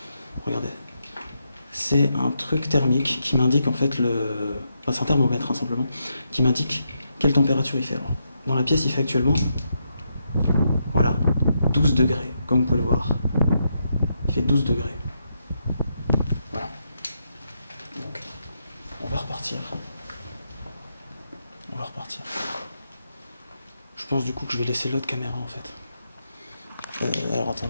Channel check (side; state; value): both; inverted; correlation -0.82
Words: Regardez. C'est un truc thermique qui m'indique en fait Enfin c'est un thermomètre hein, simplement, qui m'indique quelle température il fait. Alors, dans la pièce il fait actuellement... Voilà. 12 degrés, comme vous pouvez le voir. Il fait 12 degrés. Voilà. Donc, on va repartir. On va repartir. Je pense du coup que je vais laisser l'autre caméra en fait. Alors